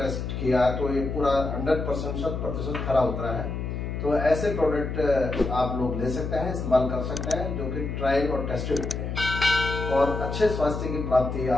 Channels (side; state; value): left; noise; hum, 4 dB below the sound